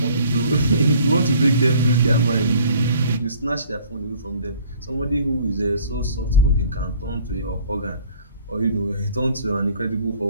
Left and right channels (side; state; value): both; inverted; correlation -0.54